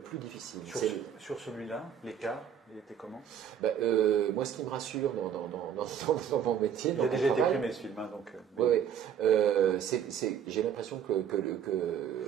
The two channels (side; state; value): left; quieter; 8.6 dB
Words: difficile. Sur celui-là, l'écart, il était comment? Moi, ce qui me rassure dans mon métier... Il a déjà été primé ce film, hein, donc... Oui. J'ai l'impression que